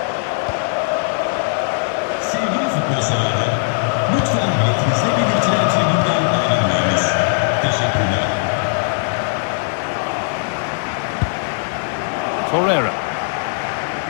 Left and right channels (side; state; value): right; silent; 67 dB below the other